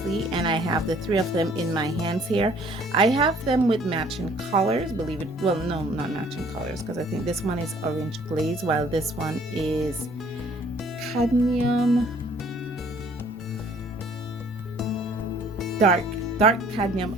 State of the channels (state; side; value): normal; both; correlation 0.58